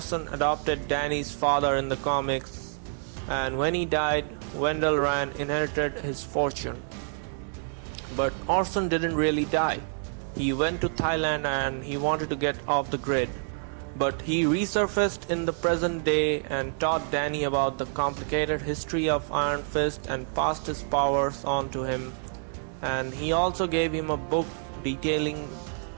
adopted Danny's father in the comics, and when he died, Wendell Rand inherited his fortune. But Orson didn't really die. He went to Thailand and he wanted to get off the grid. But he resurfaced in the present day and taught Danny about the complicated history of Iron Fist and passed his powers on to him. And he also gave him a book detailing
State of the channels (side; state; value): left; silent; 60 dB below the other